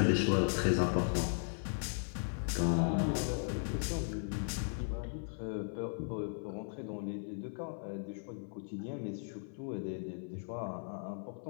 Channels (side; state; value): right; silent; 53 dB below the other